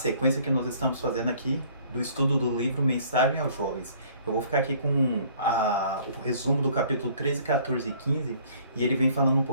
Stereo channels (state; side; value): inverted; both; correlation -0.56